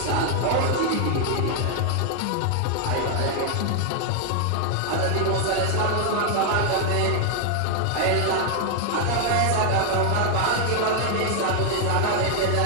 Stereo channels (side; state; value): both; different; correlation 0.00